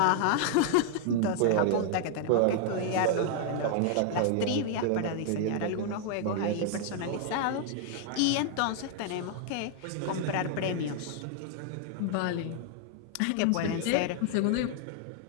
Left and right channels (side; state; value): both; different; correlation 0.00